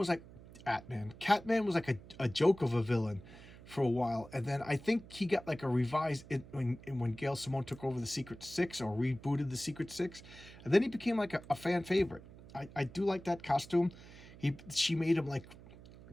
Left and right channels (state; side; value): noise; right; hum, 18 dB below the sound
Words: like a joke of a villain for a while, and then I think he got like a revised when Gail Simone took over the Secret Six or rebooted the Secret Six, and then he became like a fan favorite. I do like that costume. She made him like